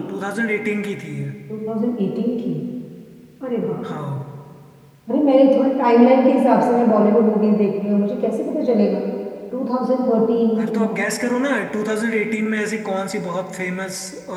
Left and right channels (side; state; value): both; identical; correlation 1.00